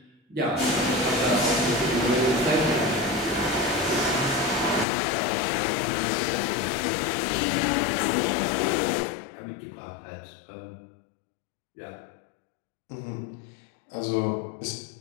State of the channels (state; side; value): drops out; right; at 4.9 s